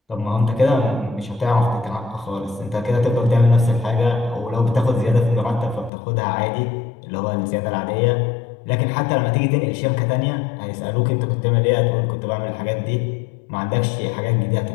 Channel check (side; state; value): right; drops out; at 5.9 s